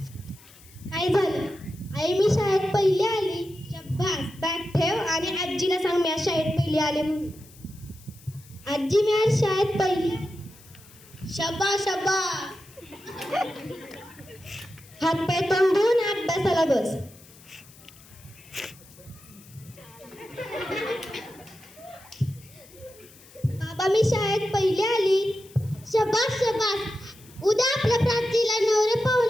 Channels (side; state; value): left; noise; hiss, 23 dB below the sound